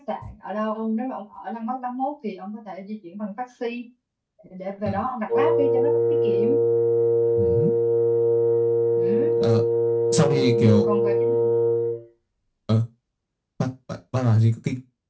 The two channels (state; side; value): identical; both; correlation 1.00